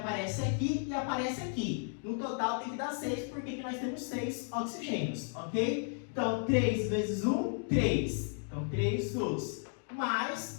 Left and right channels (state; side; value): silent; right; 55 dB below the other